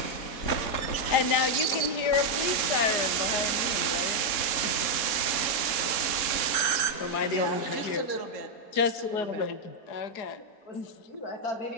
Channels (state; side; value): late; right; 3.7 ms